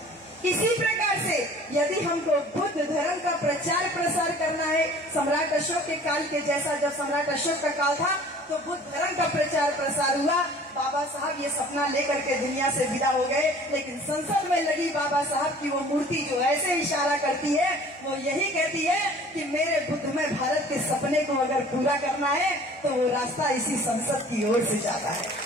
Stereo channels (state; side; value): normal; both; correlation 0.49